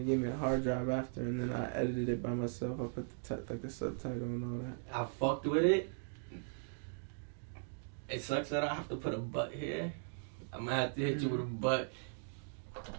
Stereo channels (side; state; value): left; silent; digital silence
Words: gave me the hard drive after, and then I edited it by myself. I put the subtitle and all that. I fucked with it. It sucks that I have to put a butt here. I'm gonna have to hit you with a butt.